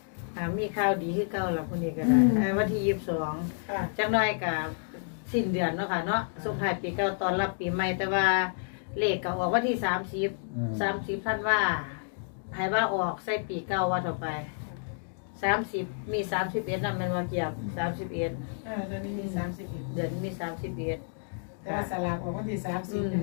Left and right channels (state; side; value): silent; right; digital silence